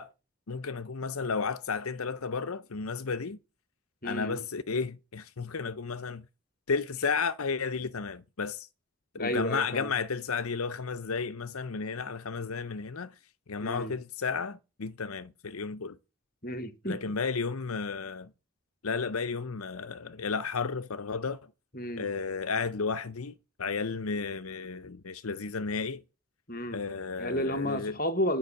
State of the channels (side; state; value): right; quieter; 3.7 dB